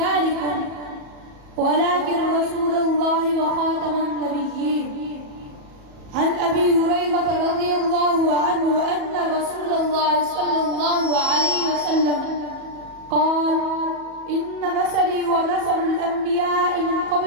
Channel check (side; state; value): left; late; 37 ms